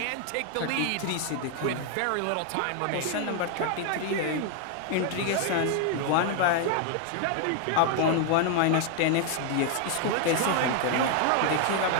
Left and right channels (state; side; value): different; both; correlation 0.00